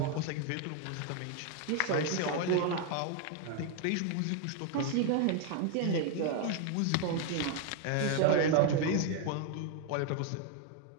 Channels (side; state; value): both; different; correlation 0.01